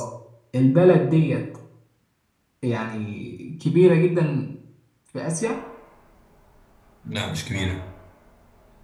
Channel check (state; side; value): identical; both; correlation 1.00